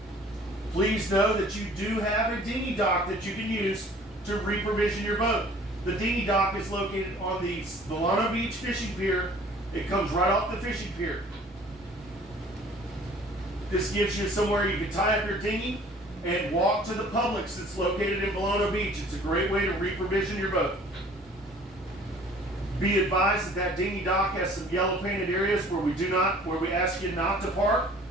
please know that you do have a dinghy dock that you can use to reprovision your boat. The dinghy dock is located on the Volano Beach fishing pier. It comes right off the fishing pier. This gives you somewhere you can tie up your dinghy and walk to the Publix that's located in Volano Beach. It's a great way to reprovision your boat. Be advised that that dinghy dock has some yellow painted areas where we ask you not to park.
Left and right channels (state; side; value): normal; both; correlation 0.51